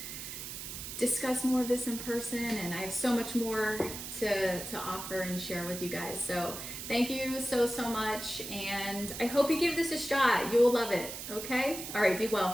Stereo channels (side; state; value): right; noise; hiss, 8 dB below the sound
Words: discuss more of this in person. And I have so much more to offer and share with you guys. So thank you so much, and I hope you give this a shot. You will love it. Okay? All right, be